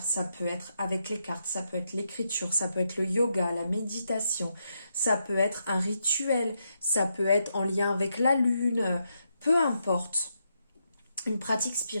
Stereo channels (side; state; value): both; inverted; correlation -0.82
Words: ça peut être avec les cartes, ça peut être l'écriture, ça peut être le yoga, la méditation, ça peut être un rituel, ça peut être en lien avec la lune, peu importe. Une pratique